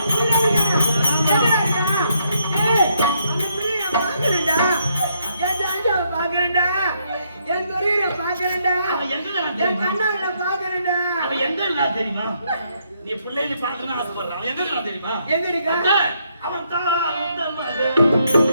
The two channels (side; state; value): both; inverted; correlation -0.74